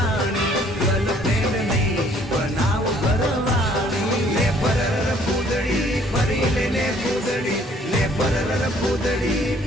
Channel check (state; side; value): normal; both; correlation 0.60